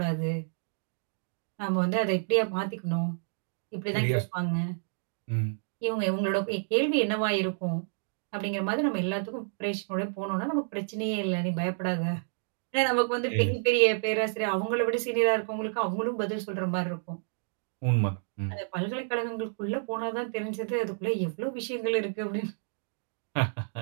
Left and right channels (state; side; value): silent; left; digital silence